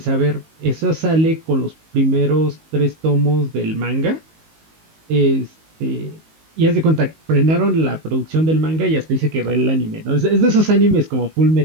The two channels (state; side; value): late; left; 19 ms